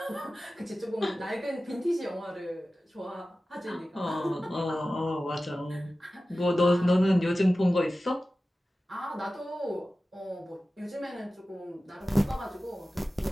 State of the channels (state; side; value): normal; both; correlation 0.95